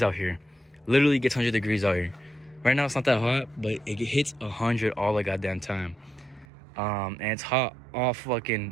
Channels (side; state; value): left; drops out; at 6.5 s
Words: out here. Literally gets 100 degrees out here. Right now it's not that hot, but it hits 100 all the goddamn time. And it's hot all